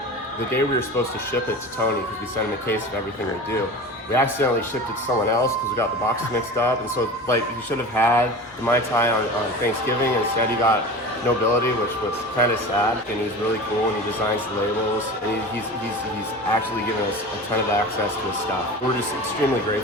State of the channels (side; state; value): both; normal; correlation 0.33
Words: supposed to ship it to Tony, because we sent him a case of everything we do, we accidentally shipped it to someone else because we got the boxes mixed up. And so, he should have had the Mai Tai on Thanksgiving. Instead, he got Nobility, which was kind of sad. And he's really cool, and he designs the labels. And he's actually given us a ton of access to his stuff. We're just extremely